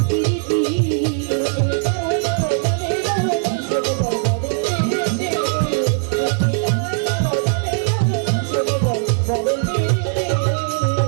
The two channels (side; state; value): left; silent; digital silence